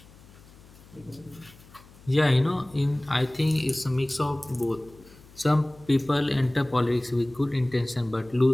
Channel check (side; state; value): left; noise; hum, 23 dB below the sound